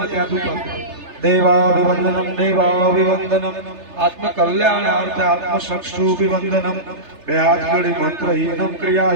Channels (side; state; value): left; late; 3.3 ms